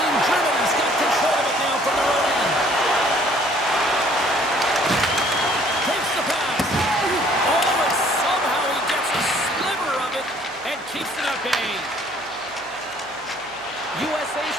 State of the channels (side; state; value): right; noise; hum, 30 dB below the sound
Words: Germany's got control of it now from their own end. Takes the pass. Oh, and somehow he gets a sliver of it and keeps it at bay. USA's